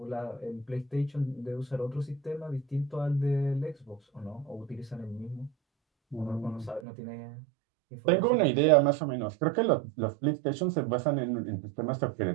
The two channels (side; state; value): left; drops out; at 6.8 s